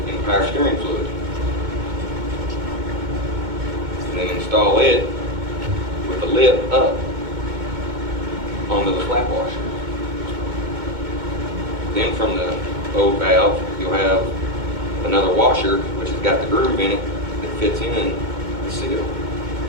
in power steering fluid. then install it with the lip up onto the flat washer. Then from the old valve, you'll have another washer which has got the groove in it that fits in the seal.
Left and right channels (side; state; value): left; late; 2.2 ms